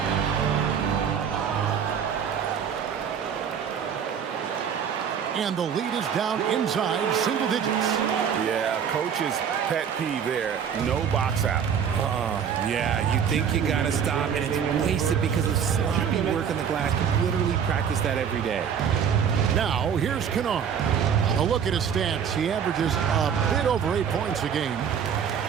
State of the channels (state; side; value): quieter; left; 7.7 dB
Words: And the lead is down inside single digits. Yeah, coach's pet peeve there. No box out. Yeah, you think you got to stop, and it's wasted because of sloppy work on the glass. You literally practice that every day. Now, here's Kennard. A look at his stats. He averages a bit over 8 points a game.